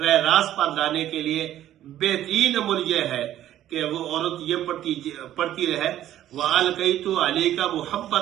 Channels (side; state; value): left; quieter; 12.5 dB